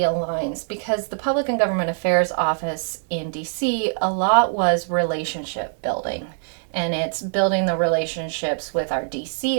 because the Public and Government Affairs office in DC, a lot was relationship building. And it's building the relationships with our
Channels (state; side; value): silent; left; digital silence